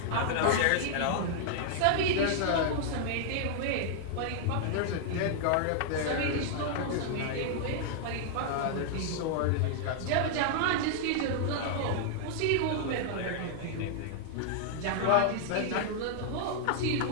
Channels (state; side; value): different; both; correlation -0.01